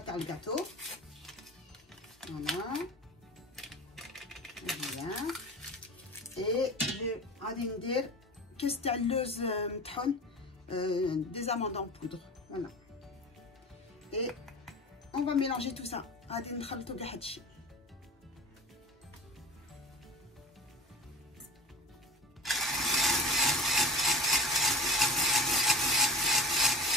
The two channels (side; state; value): both; normal; correlation 0.35